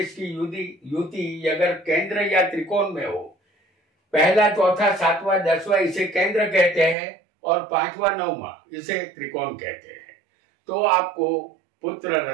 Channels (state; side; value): drops out; left; at 7.0 s